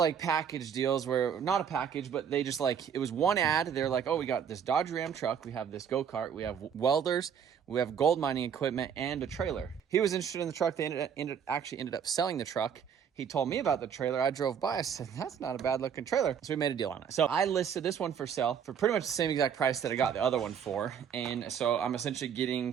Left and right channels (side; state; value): left; quieter; 7.8 dB